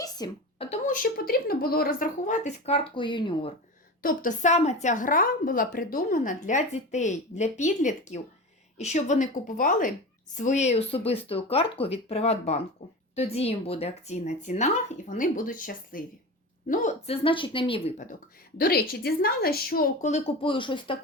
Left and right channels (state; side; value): normal; both; correlation 0.28